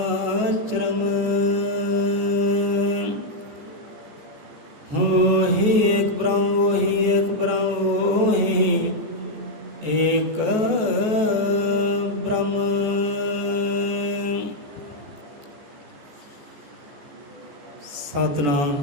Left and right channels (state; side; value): late; left; 14 ms